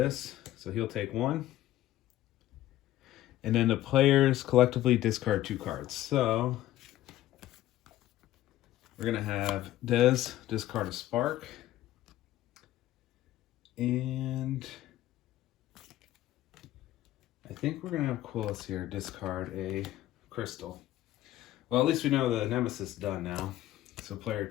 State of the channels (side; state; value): right; quieter; 14.3 dB